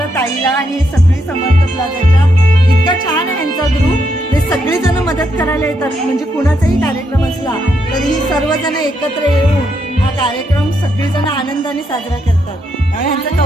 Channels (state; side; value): normal; both; correlation 0.78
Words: ताईला आणि सगळी समर्थ प्लाझाच्या इतका छान आहे यांचा ग्रुप ते सगळेजण मदत करायला येतात म्हणजे कुणाचाही कार्यक्रम असला तर ही सर्वजण एकत्र येऊन हा कार्यक्रम सगळेजण आनंदाने साजरा करतात त्यामुळे ह्यांचं